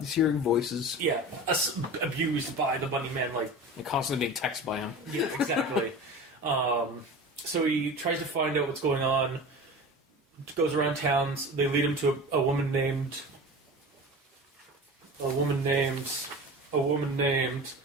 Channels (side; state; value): both; normal; correlation 0.33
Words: hearing voices. Yeah, abused by the bunny man, like and constantly being texted by him. Yeah, exactly. So he tries to find out what's going on. Goes around towns. They lead him to a woman named Candace. They